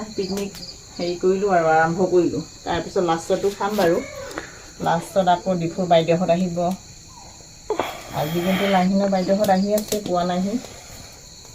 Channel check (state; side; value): identical; both; correlation 1.00